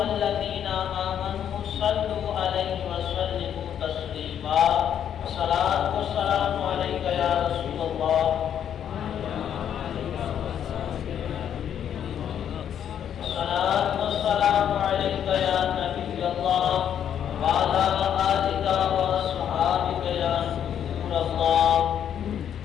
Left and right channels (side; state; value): right; quieter; 9.3 dB